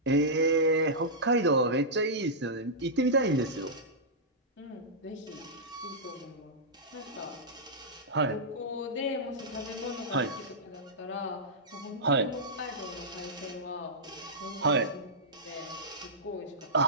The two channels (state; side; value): normal; both; correlation -0.13